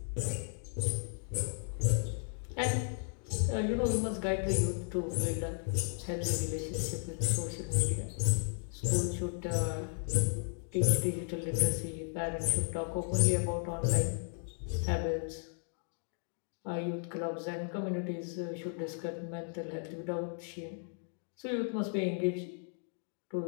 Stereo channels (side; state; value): right; silent; 55 dB below the other